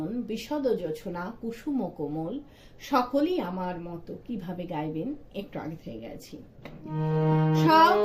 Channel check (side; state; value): both; identical; correlation 1.00